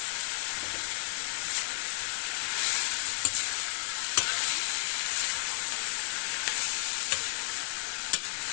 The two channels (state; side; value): quieter; right; 39.0 dB